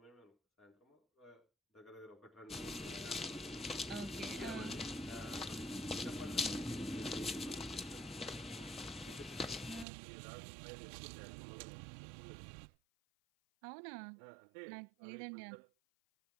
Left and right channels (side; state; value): left; drops out; at 9.9 s